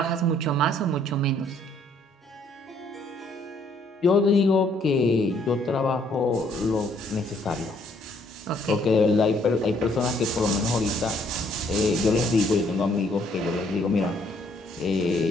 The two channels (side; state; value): both; normal; correlation 0.66